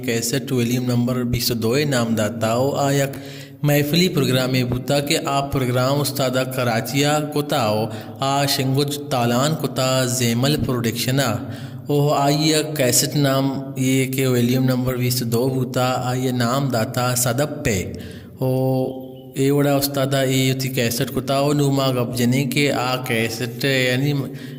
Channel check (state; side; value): identical; both; correlation 1.00